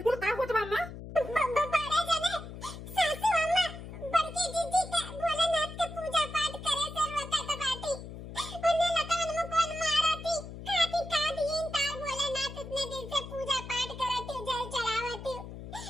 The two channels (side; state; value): left; noise; hum, 11 dB below the sound